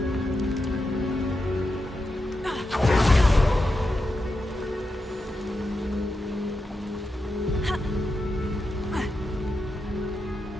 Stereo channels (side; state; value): both; normal; correlation 0.88